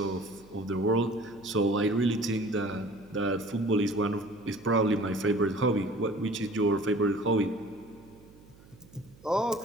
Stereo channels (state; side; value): noise; right; hum, 24 dB below the sound